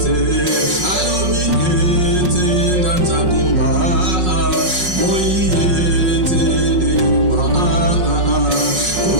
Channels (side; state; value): left; late; 5.5 ms